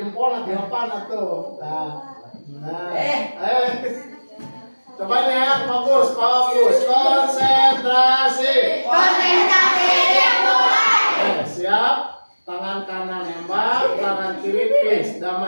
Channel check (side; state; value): both; inverted; correlation -1.00